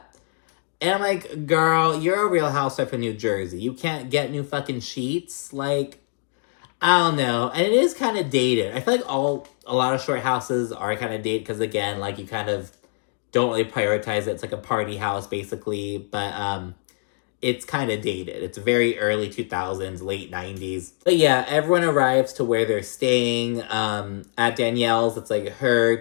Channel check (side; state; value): right; silent; 63 dB below the other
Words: And I'm like, girl, you're a Real Housewife of New Jersey. You can't get new fucking sheets? I don't know. And it is kind of dated. I feel like a lot of short houses are kind of dated because, again, you kind of don't really prioritize it. It's like a party house, basically. But it's kind of dated. It's very early 2000s, late 90s. But yeah, everyone arrives to where they're staying. At Danielle's, it's her,